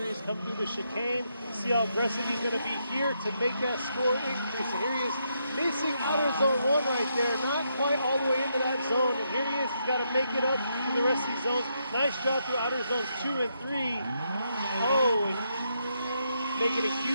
he's come through the chicane. See how aggressive he's going to be here to make that score increase. And here he is missing outer zone 1 right there. Not quite all the way into that zone. And here he is. He's got to make it up to the rest of these zones. Nice job through outer zones 2 and 3. Oh, and making a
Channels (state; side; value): inverted; both; correlation -0.79